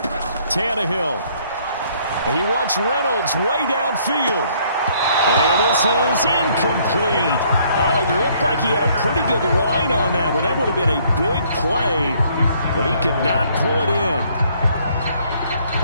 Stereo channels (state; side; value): inverted; both; correlation -0.64